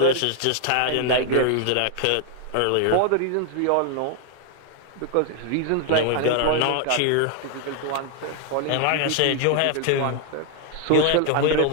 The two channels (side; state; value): both; different; correlation 0.00